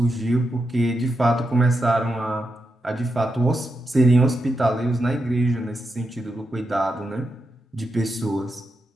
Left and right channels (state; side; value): normal; both; correlation 0.86